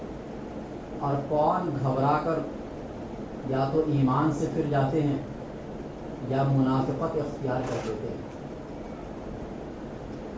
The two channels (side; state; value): both; identical; correlation 1.00